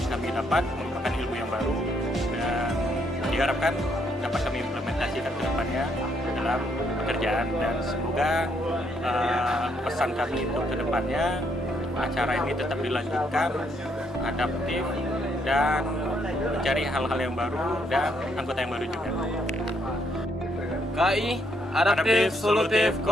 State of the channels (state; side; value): normal; both; correlation 0.72